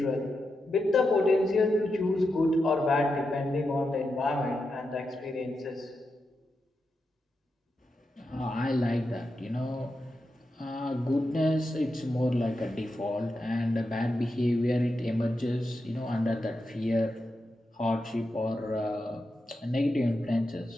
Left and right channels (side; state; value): both; normal; correlation 0.88